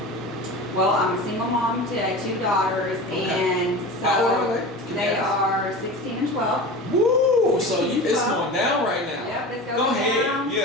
Well, I'm a single mom to 2 daughters, and How old are they are 16 and 12. Woo! So it's going down right now. Yep, it's going Go ahead. down.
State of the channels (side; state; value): both; normal; correlation 0.32